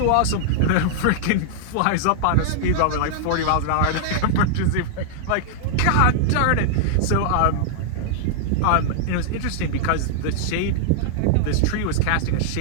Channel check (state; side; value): different; both; correlation -0.01